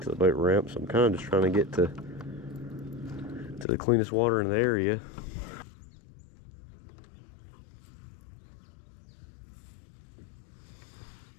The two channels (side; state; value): right; drops out; at 3.7 s